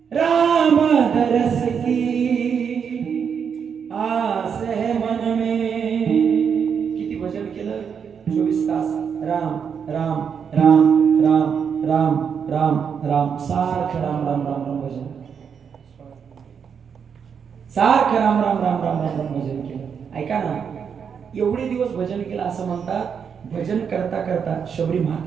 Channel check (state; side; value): quieter; left; 7.0 dB